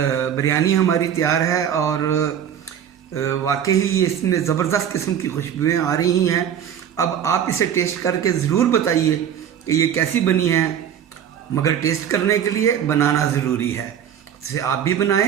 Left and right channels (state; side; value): quieter; left; 9.2 dB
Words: बिरयानी हमारी तैयार है और वाकई ही इसमें ज़बरदस्त किस्म की खुशबुएं आ रही हैं। अब आप इसे टेस्ट करके ज़रूर बताइए कि ये कैसी बनी है, मगर टेस्ट करने के लिए बनाना ज़रूरी है। इसे आप भी